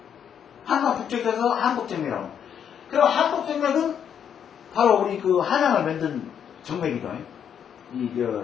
한강 북쪽에서 한복정맥이라고. 그럼 한복정맥은 바로 우리 한양을 만든 정맥이죠.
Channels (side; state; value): right; quieter; 8.4 dB